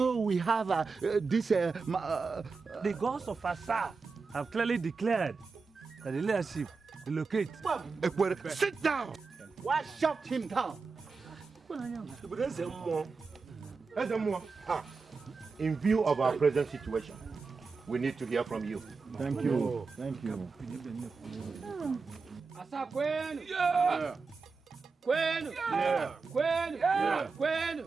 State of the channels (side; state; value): left; quieter; 4.6 dB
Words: we have The gods of Asa have clearly declared that the leadership relocate. Sit down! Why shut him down? In view of our present situation, we need to hear from you. Thank you. Thank you. Asa kwenu. Yeah. Kwenu. Yeah. Kwenu. Yeah.